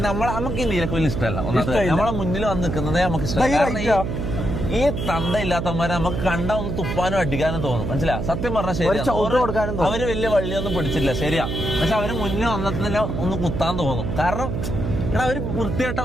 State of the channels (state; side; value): noise; right; hum, 3 dB below the sound